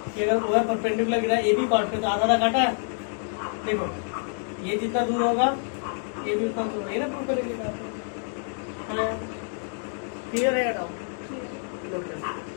कि अगर वो परपेंडिकुलर गिरा ए बी कॉर्ड पे तो आधा काटा है, देखो ये जितना दूर होगा ये भी उतना दूर, ये ना प्रूव करेंगे। क्लियर है डाउट?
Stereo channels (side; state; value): right; silent; 56 dB below the other